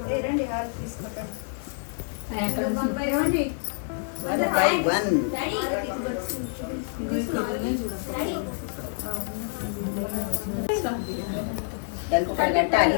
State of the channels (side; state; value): right; silent; digital silence